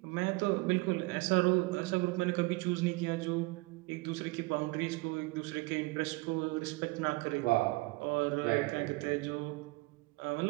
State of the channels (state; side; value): quieter; left; 23.8 dB